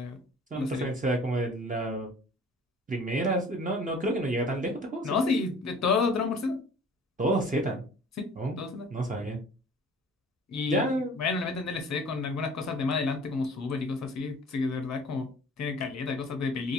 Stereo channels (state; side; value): normal; both; correlation 0.48